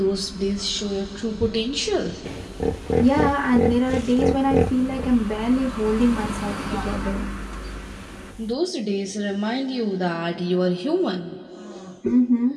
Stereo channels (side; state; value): both; identical; correlation 1.00